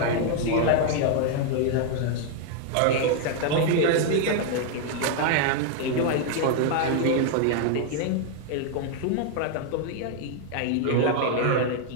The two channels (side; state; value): both; different; correlation 0.00